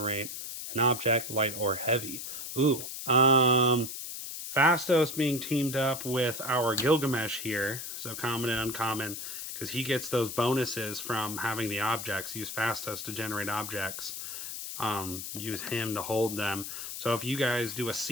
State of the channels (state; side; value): noise; left; hiss, 7 dB below the sound